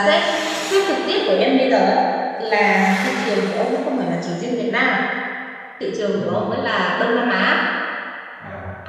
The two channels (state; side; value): identical; both; correlation 1.00